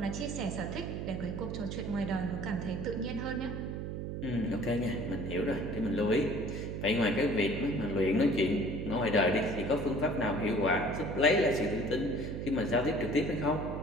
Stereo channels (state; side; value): noise; right; hum, 4 dB below the sound